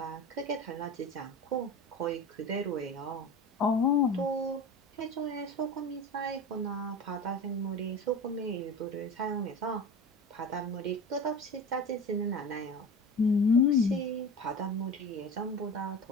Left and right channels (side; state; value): both; normal; correlation 0.31